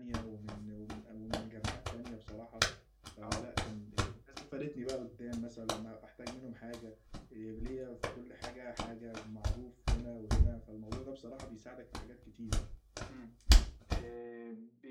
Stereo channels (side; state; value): both; identical; correlation 1.00